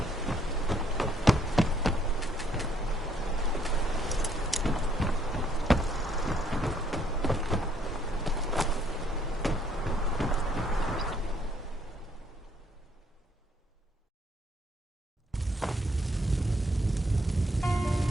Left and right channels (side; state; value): both; normal; correlation 0.68